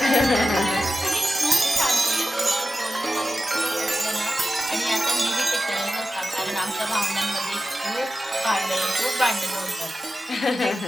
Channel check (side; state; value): both; normal; correlation 0.93